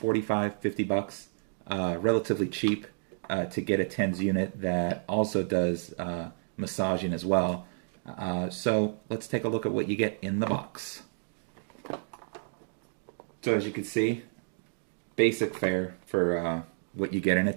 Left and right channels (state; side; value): silent; left; digital silence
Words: 50 bucks. Relatively cheap to get a TENS unit that also does massaging as well. So let's take a look at what you get in the box. So as you can see, basic fare for what you get in a